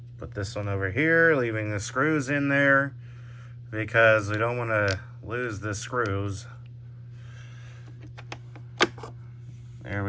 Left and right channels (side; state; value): both; identical; correlation 1.00